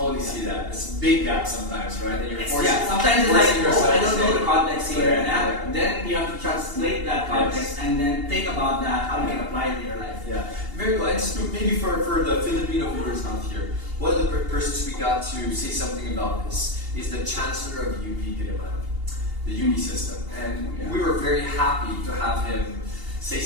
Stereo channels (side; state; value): left; late; 2.8 ms